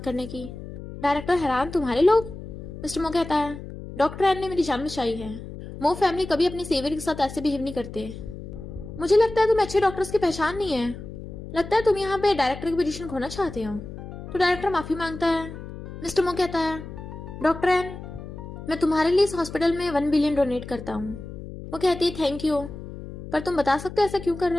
करने की? डायरेक्टर हैरान, तुम्हारे लोग? मिस्टर मो कहता है, डॉक्टर एन ने मेरी जान बचाई है, मो फैमिली कभी अपनी सेवियर के साथ ऐसे बिहेव नहीं करते। मुझे लगता है तुम्हें अच्छे डॉक्टर्स की पहचान नहीं है, लगता है तुम यहाँ पे डायरेक्टर की पोजीशन खोना चाहते हो। तो डायरेक्टर माफी मांगता है। मिस्टर मो कहता है, डॉक्टर एन मैं तुम्हारे लिए इस हॉस्पिटल में 1 बिलियन डोनेट करता हूँ। वो कहती है, थैंक यू, पर तुम बता सकते हो ऐसा क्यों कर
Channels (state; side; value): noise; left; hum, 11 dB below the sound